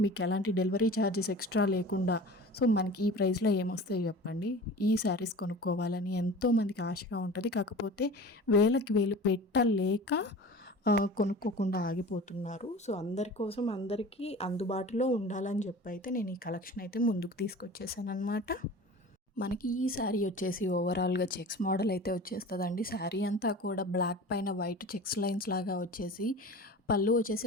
మీకు ఎలాంటి డెలివరీ ఛార్జెస్ ఎక్స్ట్రా లేకుండా. సో మనకి ఈ ప్రైస్లో ఏమొస్తాయి చెప్పండి. ఈ శారీస్ కొనుక్కోవాలని ఎంతోమందికి ఆశగా ఉంటుంది, కాకపోతే వేలకి వేలు పెట్టలేక కొనుక్కోకుండా ఆగిపోతున్నారు. సో అందరి కోసం, అందరికీ అందుబాటులో ఉండాలని చెప్పి అయితే నేను ఈ కలెక్షన్ అయితే ముందుకు తీసుకొచ్చేసాను అనమాట. మనకి ఈ శారీ వచ్చేసి ఓవరాల్గా చెక్స్ మోడల్ అయితే వచ్చేస్తుందండి. శారీ అంతా కూడా బ్లాక్ పైన వైట్ చెక్స్ లైన్స్ లాగా వచ్చేసి, పళ్ళు వచ్చేసి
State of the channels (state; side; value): normal; both; correlation 0.38